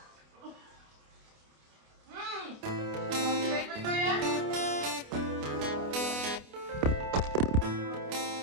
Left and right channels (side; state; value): left; late; 28 ms